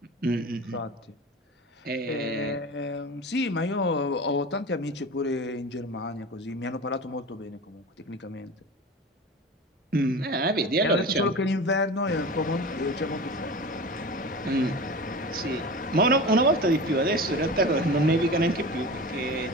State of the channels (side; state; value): both; normal; correlation 0.32